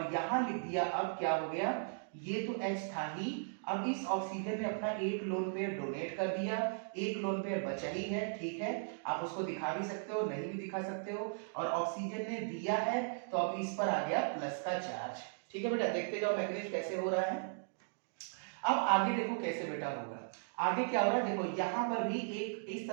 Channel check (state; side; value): silent; left; digital silence